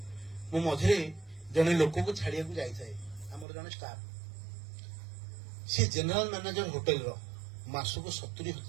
ମୁଁ ମଝିରେ ଜଣେ ଲୋକକୁ ଛାଡିବାକୁ ଯାଇଥାଏ, ଆମର ଜଣେ ଷ୍ଟାଫ, ସେ ଜେନେରାଲ ମ୍ୟାନେଜର ହୋଟେଲର, ମାସକୁ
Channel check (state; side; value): drops out; left; at 3.5 s